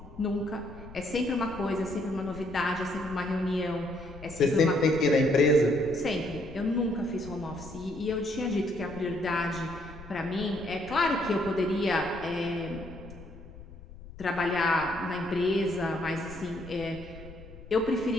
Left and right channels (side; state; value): left; noise; rumble, 16 dB below the sound